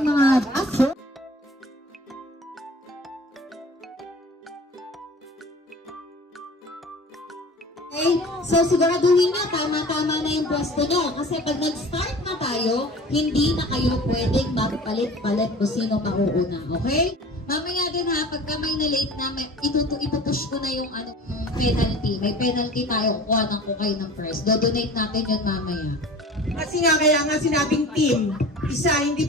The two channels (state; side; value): normal; both; correlation 0.42